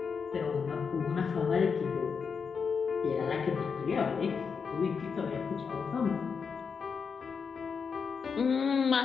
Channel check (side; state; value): right; quieter; 5.9 dB